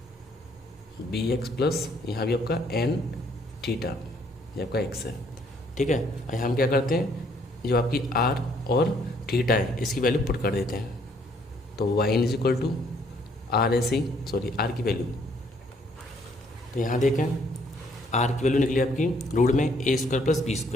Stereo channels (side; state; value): both; normal; correlation 0.66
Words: B x plus यहाँ भी आपका n थीटा, ये आपका x है। ठीक है, और यहाँ हम क्या करते हैं, जो आपकी r और थीटा है इसकी वैल्यू पुट कर देते हैं, तो y is equal to r ऐसे ही आर की वैल्यू, तो यहाँ देखें आर की वैल्यू निकली आपकी रूट में ए स्क्वायर प्लस बी